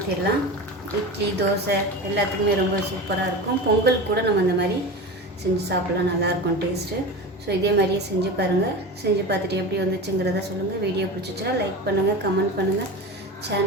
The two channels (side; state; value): both; normal; correlation 0.28